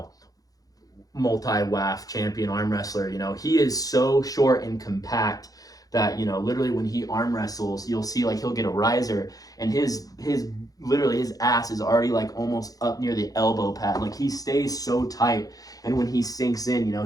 multi-WAF champion arm wrestler. You know, he is so short and compact that, you know, literally when he arm wrestles, you'll see like he'll get a riser, and his ass is already like almost up near the elbow pad. Like he stays so tight, and when he sinks in, you know,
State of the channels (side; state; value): right; late; 0.18 ms